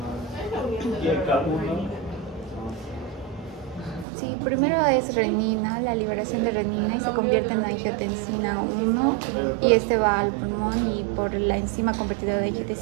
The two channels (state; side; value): drops out; left; at 4.0 s